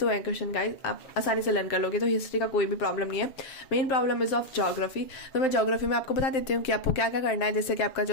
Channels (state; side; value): late; right; 7.1 ms